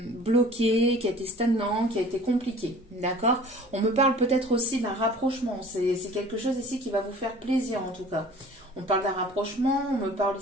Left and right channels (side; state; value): both; normal; correlation 0.46